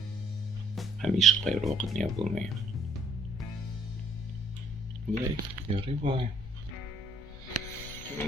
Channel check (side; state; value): both; normal; correlation 0.64